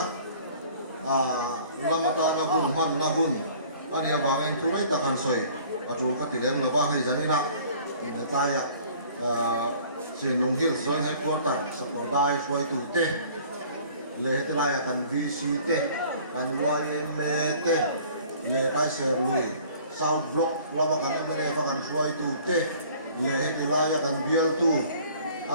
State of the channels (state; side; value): inverted; both; correlation -0.51